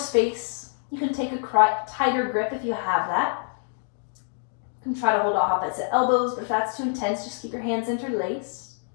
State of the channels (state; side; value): silent; right; 58 dB below the other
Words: You can take a tighter grip if you have that. You can try to hold out opposite elbows, but if that's too intense, just keep your hands interlaced.